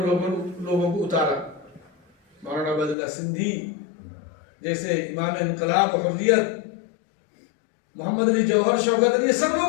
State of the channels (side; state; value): right; drops out; at 3.0 s